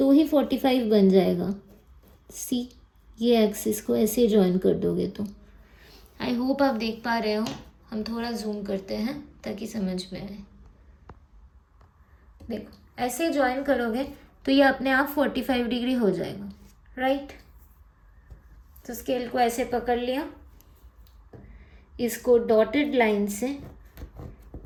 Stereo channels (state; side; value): identical; both; correlation 1.00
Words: ही 45 बन जाएगा। सी, ये एक्सिस को ऐसे ज्वाइन कर दोगे तो। आई होप आप देख पा रहे हो। हम थोड़ा जूम करते हैं ताकि समझ में आए। देखो ऐसे ज्वाइन करोगे तो ये अपने आप 45 डिग्री हो जाएगा, राइट। तो स्केल को ऐसे पकड़ लिया, इसको डॉटेड लाइन से